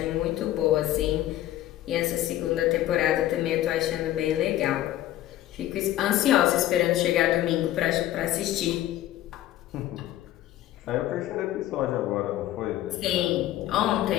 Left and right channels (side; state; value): right; quieter; 13.8 dB